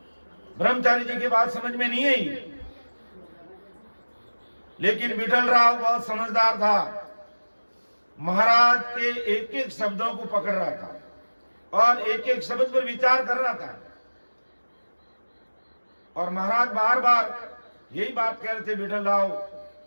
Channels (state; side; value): inverted; both; correlation -1.00